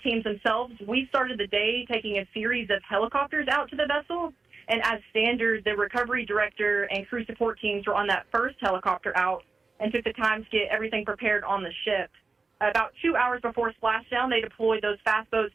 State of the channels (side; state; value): left; quieter; 4.1 dB